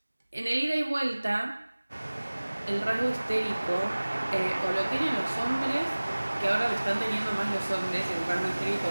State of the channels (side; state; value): both; inverted; correlation -1.00